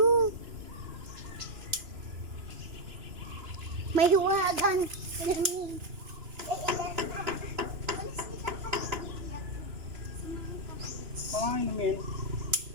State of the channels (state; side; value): late; left; 2.9 ms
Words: May huwagan. Pangay namin.